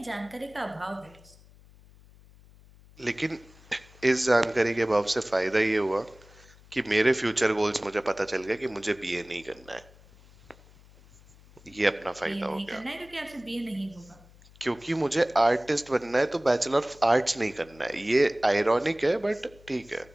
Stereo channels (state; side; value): noise; left; hum, 25 dB below the sound